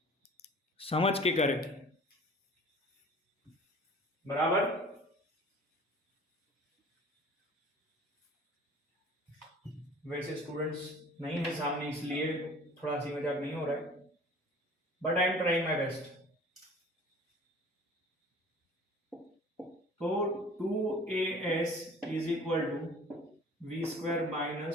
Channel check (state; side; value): normal; both; correlation 0.46